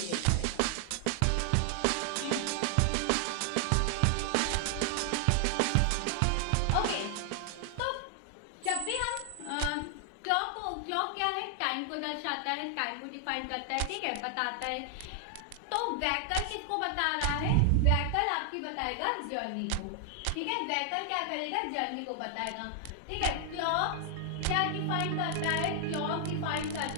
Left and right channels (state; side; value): different; both; correlation 0.00